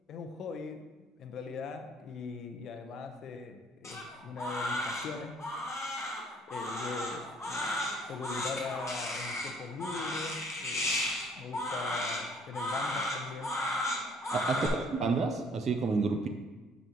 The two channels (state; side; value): normal; both; correlation 0.59